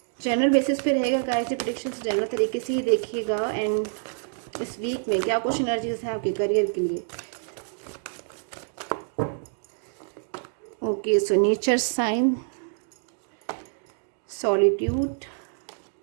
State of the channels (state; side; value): silent; left; digital silence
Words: General basis पे रहेगा गाइस, ये प्रेडिक्शंस जनरल तरीके से ही देखिएगा। एंड इस वीक में क्या कुछ एनर्जीज हैं आपके करियर के लिए। Okay, so nature sign, solitude,